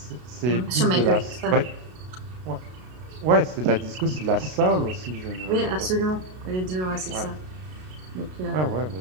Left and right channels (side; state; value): left; late; 32 ms